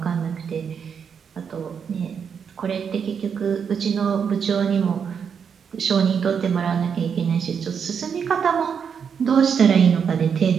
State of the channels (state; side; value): quieter; left; 6.9 dB